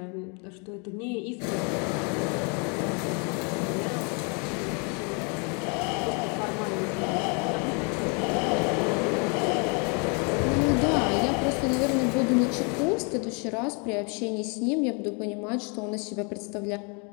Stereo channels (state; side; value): quieter; right; 35.3 dB